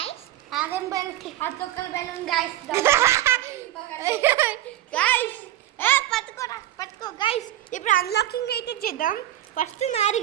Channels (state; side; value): quieter; left; 13.5 dB